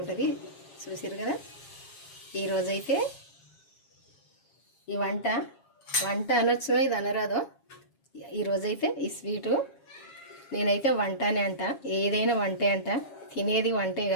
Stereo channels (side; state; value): right; late; 7.3 ms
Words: ఉంటుంది. చూసారు కదా. ఈరోజైతే ఈ వంట అనొచ్చు, ఇది అనరాదో. ఈరోజైతే ఈ స్వీటు నేనైతే వంటనే అంట. ఏదైనా వంటే అంట, తినేది వంటే